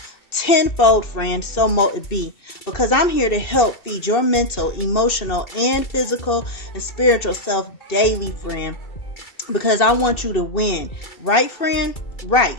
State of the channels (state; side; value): late; right; 2.7 ms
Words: tenfold, friend, so mote it be, because I'm here to help feed your mental, emotional, and physical and spiritual self daily, friend, because I want you to win. Right, friend? Right.